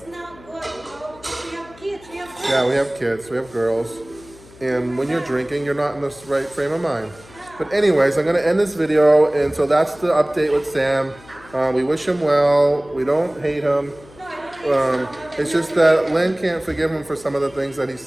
not good, you know, because we have kids, we have girls. Yeah, we have kids, we have girls. And when you're drinking, you're not in the right frame of mind. But anyways, I'm going to end this video. And so that's the update with Sam. We wish him well. We don't hate him. It's just that Lynn can't forgive him for some of the things that he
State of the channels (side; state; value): left; noise; hum, 23 dB below the sound